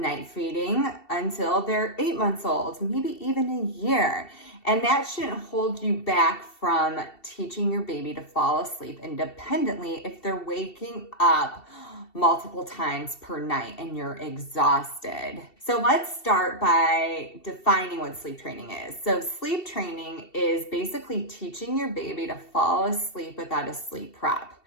feeding until they're 8 months old, maybe even a year. And that shouldn't hold you back from teaching your baby to fall asleep independently if they're waking up multiple times per night and you're exhausted. So let's start by defining what sleep training is. So sleep training is basically teaching your baby to fall asleep without a sleep prop.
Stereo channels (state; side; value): late; right; 2.7 ms